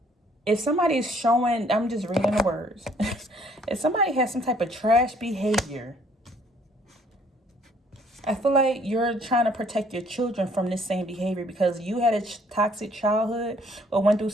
If somebody is showing, I'm just reading the words. If somebody has some type of trash behavior, I feel like you're trying to protect your children from this same behavior because you had a toxic childhood or went through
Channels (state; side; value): normal; both; correlation 0.61